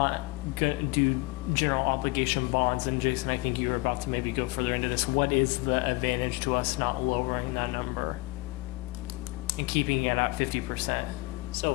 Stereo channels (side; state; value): right; quieter; 24.2 dB